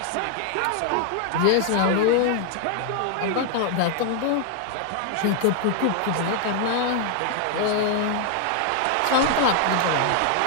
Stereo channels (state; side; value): different; both; correlation 0.00